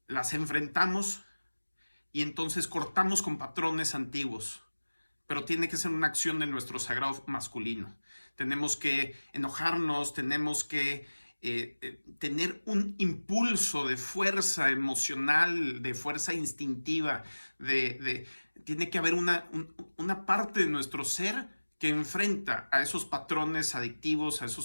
las enfrentamos y entonces cortamos con patrones antiguos. Pero tiene que ser una acción de nuestro sagrado masculino. Tenemos que enojarnos, tenemos que tener un impulso de fuerza emocional, de fuerza instintiva, tiene que haber una parte de nuestro ser que enfrenta a esos patrones adictivos, a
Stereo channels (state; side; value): inverted; both; correlation -1.00